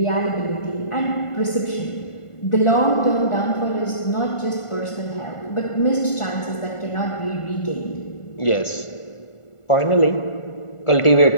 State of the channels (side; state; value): right; late; 1.4 ms